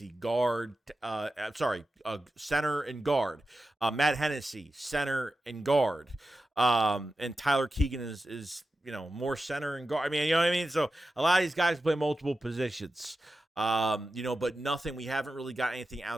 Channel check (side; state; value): both; normal; correlation 0.92